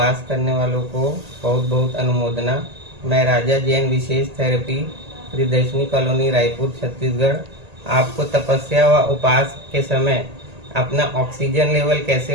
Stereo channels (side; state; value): left; late; 1.8 ms